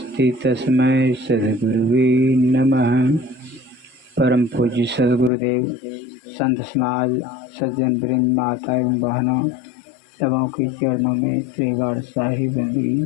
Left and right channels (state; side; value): drops out; right; at 5.3 s